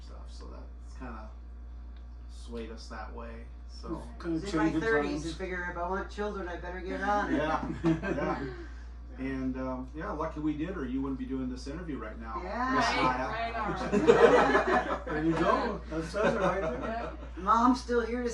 So that's kind of swayed us that way. So. Kind I was of in my changing 30s times. and figure if I want children, I better get on it. Yeah. Yeah. And lucky we did, or you wouldn't be doing this interview right now. Yeah. Right on. There you go. That says it right there. Yep. Mom's still here to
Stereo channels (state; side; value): identical; both; correlation 1.00